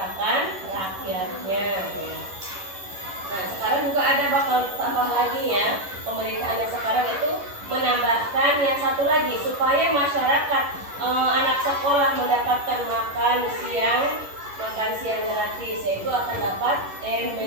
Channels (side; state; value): left; late; 11 ms